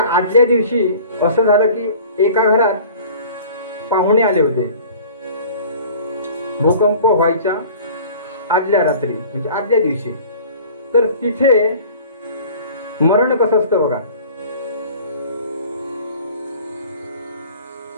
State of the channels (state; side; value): inverted; both; correlation -0.45